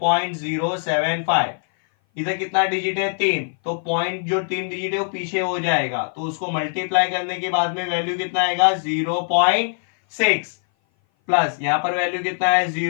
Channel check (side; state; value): right; silent; 58 dB below the other